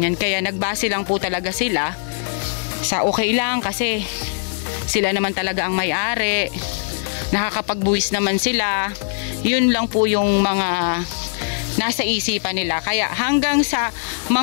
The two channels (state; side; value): silent; right; digital silence